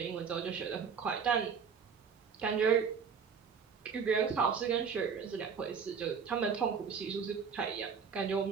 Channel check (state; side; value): quieter; left; 6.3 dB